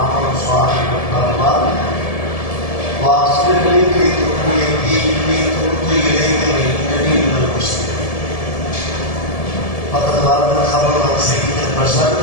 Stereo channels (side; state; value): right; late; 1.7 ms